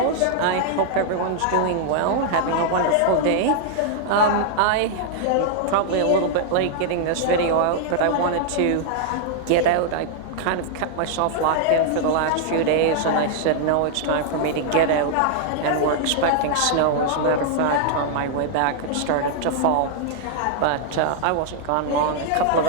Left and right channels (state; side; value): different; both; correlation -0.01